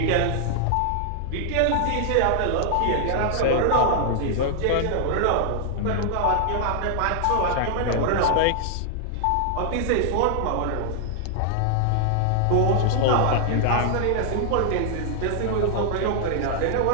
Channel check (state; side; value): different; both; correlation 0.00